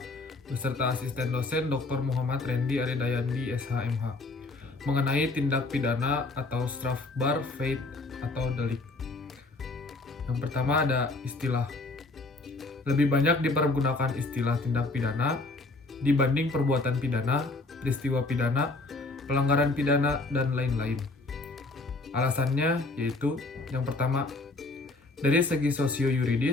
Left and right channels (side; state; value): right; quieter; 3.2 dB